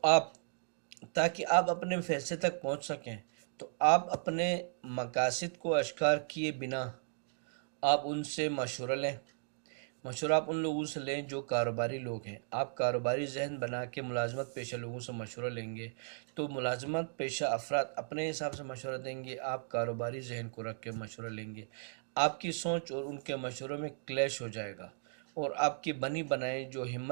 تاکہ آپ اپنے فیصلے تک پہنچ سکیں، تو آپ اپنے مقاصد کو اشکار کیے بنا آپ ان سے مشورہ لیں۔ مشورہ آپ ان لوگوں سے لیں جو کاروباری لوگ ہیں۔ آپ کاروباری ذہن بنا کے ملازمت پیشہ لوگوں سے مشورہ لیں گے تو ملازمت پیشہ افراد اپنے حساب سے مشورہ دیں گے، آپ کاروباری ذہن کو رکھ کے مشورہ لیں گے۔ آپ کی سوچ اور ان کے مشوروں میں کلیش ہو جائے گا اور آپ کی بنی بنائی جو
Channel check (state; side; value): silent; left; digital silence